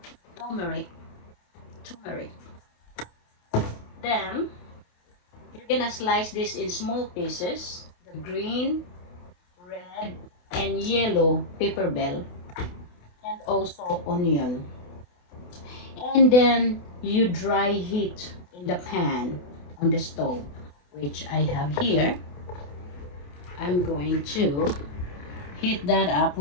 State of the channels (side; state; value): right; late; 28 ms